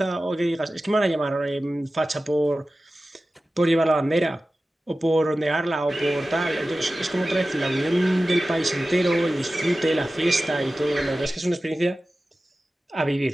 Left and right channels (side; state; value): both; normal; correlation 0.95